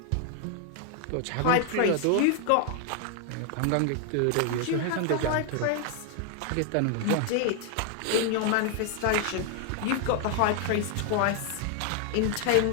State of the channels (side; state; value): both; different; correlation 0.00